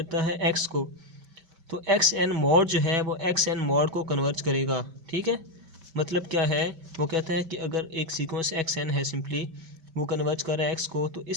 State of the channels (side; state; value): left; late; 5.2 ms